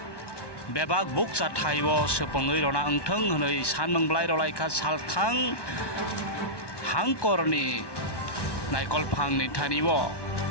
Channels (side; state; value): right; late; 1.1 ms